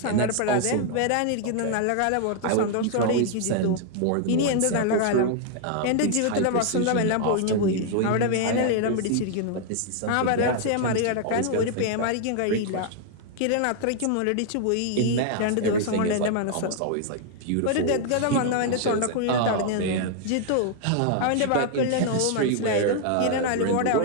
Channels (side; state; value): both; different; correlation 0.00